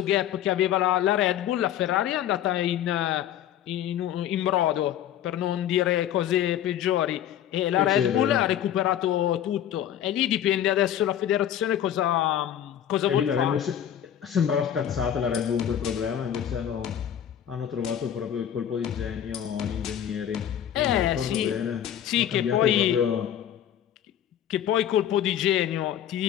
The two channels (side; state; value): right; quieter; 10.5 dB